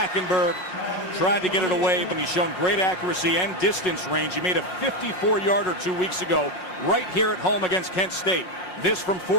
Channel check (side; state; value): right; late; 5.4 ms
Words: tried to get it away, but he's shown great accuracy and distance range. He made a 54-yarder 2 weeks ago right here at home against Kent State. This from